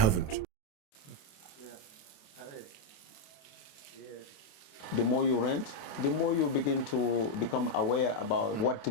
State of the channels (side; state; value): right; late; 28 ms